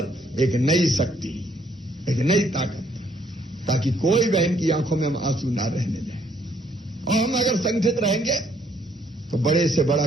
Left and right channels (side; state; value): both; normal; correlation 0.68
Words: एक नई शक्ति, एक नई ताकत, ताकि कोई बहन की आंखों में हम आंसू ना रहने दें। और हम अगर संगठित रहेंगे तो बड़े से बड़ा